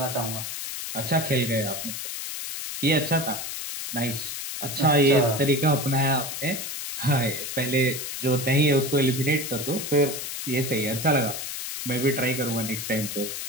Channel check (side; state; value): left; noise; hiss, 6 dB below the sound